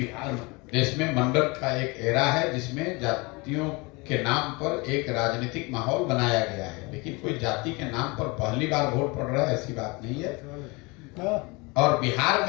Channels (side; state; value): right; quieter; 26.6 dB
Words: देश में मंडल का एक एरा है, जिसमें जातियों के नाम पर एक राजनीतिक माहौल बनाया गया है, लेकिन कोई जाति के नाम पर पहली बार वोट पड़ रहा है ऐसी बात नहीं है। और बिहार